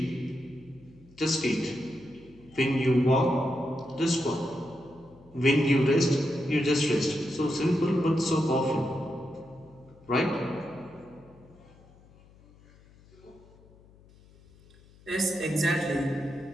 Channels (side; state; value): left; noise; hum, 26 dB below the sound